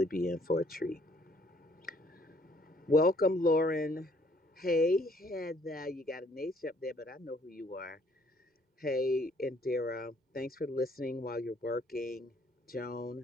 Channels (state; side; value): normal; both; correlation 0.63